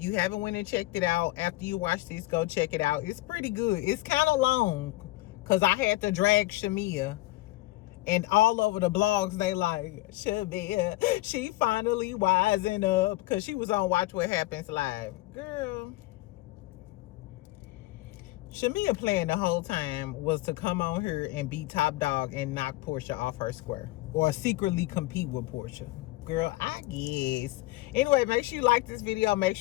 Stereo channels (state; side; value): quieter; right; 19.0 dB